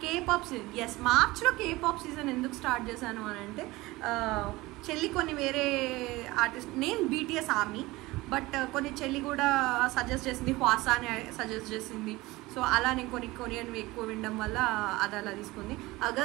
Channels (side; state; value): left; quieter; 20.3 dB